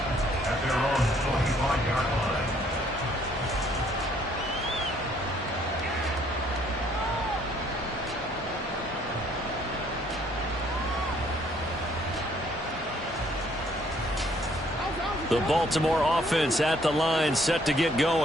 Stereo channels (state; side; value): normal; both; correlation 0.64